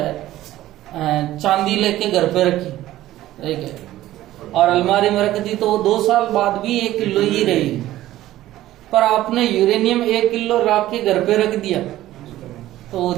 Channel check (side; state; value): left; quieter; 14.8 dB